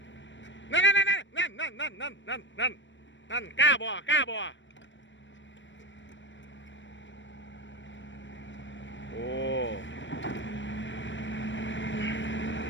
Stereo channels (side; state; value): right; late; 0.54 ms